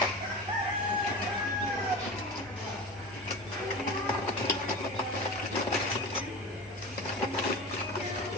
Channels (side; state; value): both; normal; correlation 0.31